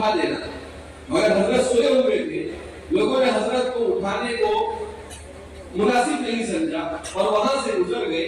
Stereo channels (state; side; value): identical; both; correlation 1.00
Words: دینا، مگر حضرت سوئے ہوئے تھے۔ لوگوں نے حضرت کو اٹھانے کو مناسب نہیں سمجھا اور وہاں سے گزر گئے،